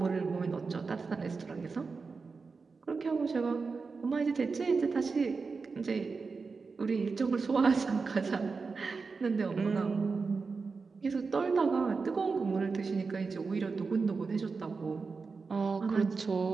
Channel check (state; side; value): quieter; left; 4.6 dB